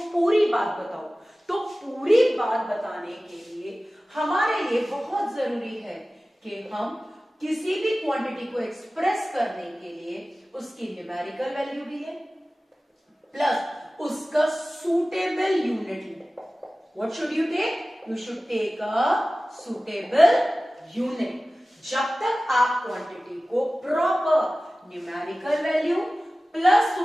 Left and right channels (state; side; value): normal; both; correlation 0.97